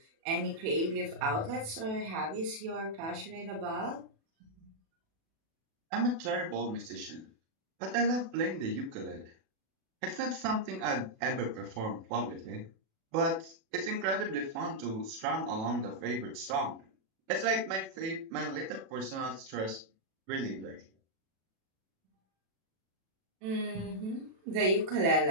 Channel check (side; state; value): left; late; 37 ms